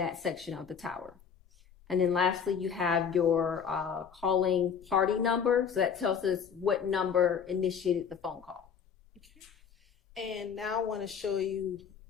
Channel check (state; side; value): quieter; right; 7.0 dB